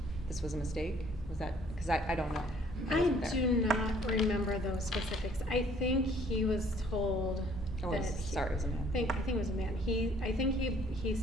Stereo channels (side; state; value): both; normal; correlation 0.59